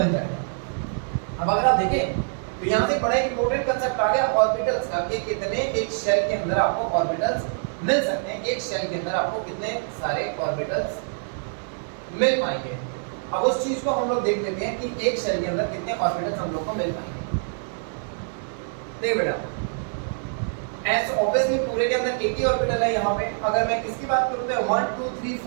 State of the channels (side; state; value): left; silent; digital silence